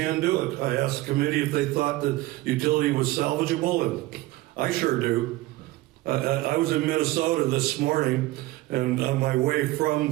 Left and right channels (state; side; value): quieter; left; 18.7 dB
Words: do it. I asked the committee if they thought that utility was salvageable, and I sure do. I was in Minnesota this morning, and on my way